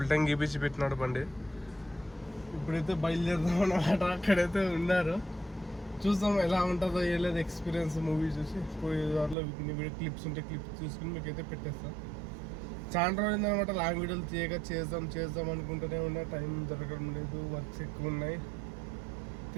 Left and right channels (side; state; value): left; drops out; at 9.3 s